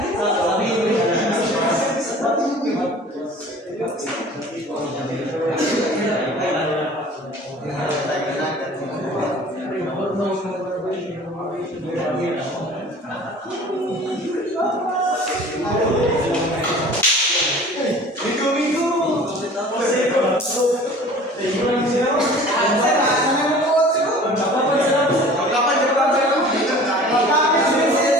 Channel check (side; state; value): both; normal; correlation 0.45